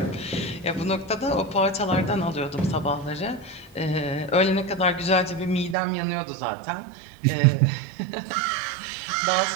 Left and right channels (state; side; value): drops out; left; at 5.8 s